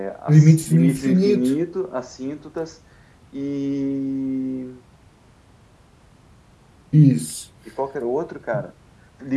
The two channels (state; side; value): identical; both; correlation 1.00